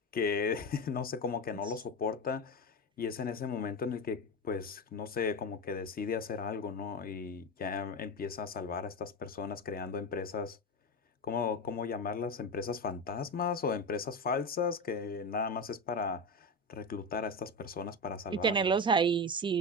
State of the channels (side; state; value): both; normal; correlation 0.19